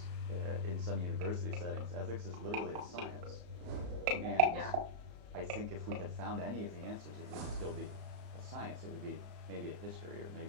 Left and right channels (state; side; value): late; left; 34 ms